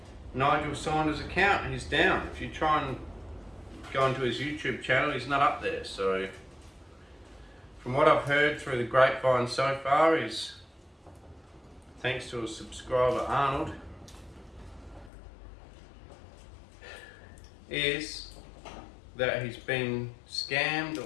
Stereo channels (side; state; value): right; drops out; at 15.1 s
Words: Nigel Saunders' account. He's down. If you try and go into his YouTube channel, he's not up there. So from what I've heard through the grapevine so far is, thanks to a subscriber Arnold, is that he's been scammed